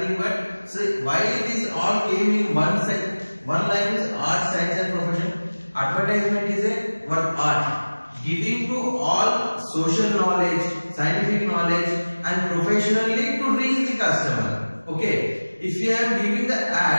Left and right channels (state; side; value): inverted; both; correlation -1.00